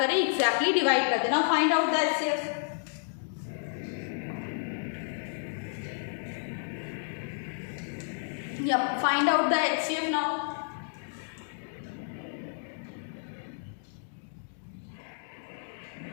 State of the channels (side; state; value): right; silent; digital silence